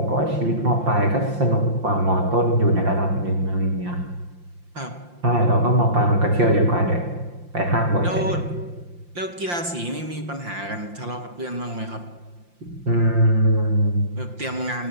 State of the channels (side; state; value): left; late; 5.7 ms